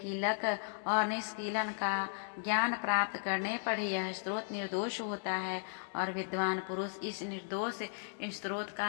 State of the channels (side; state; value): right; silent; digital silence